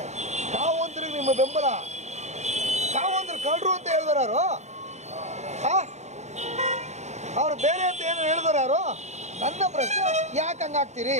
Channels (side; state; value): left; late; 0.33 ms